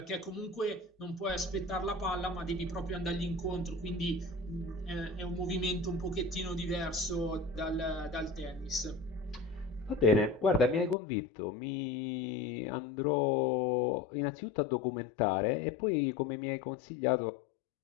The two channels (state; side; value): drops out; right; at 11.0 s